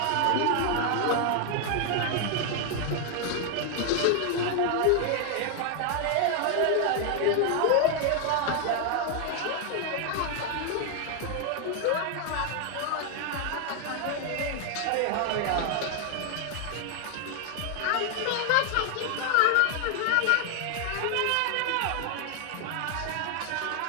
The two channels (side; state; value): both; different; correlation 0.00